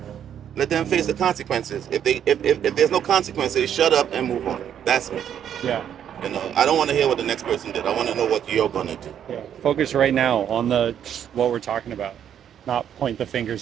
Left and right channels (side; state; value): left; quieter; 9.4 dB